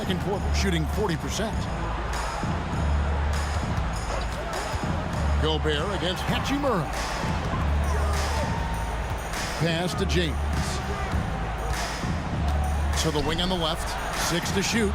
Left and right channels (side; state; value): both; identical; correlation 1.00